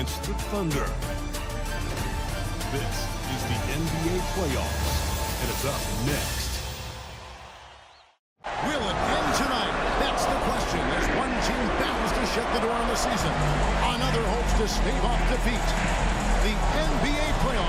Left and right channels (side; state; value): both; identical; correlation 1.00